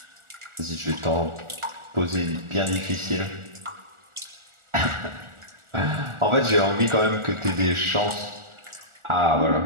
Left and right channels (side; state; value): left; late; 1.4 ms